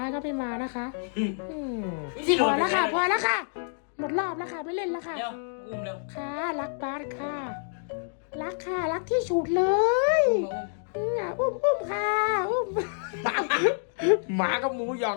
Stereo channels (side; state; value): right; silent; digital silence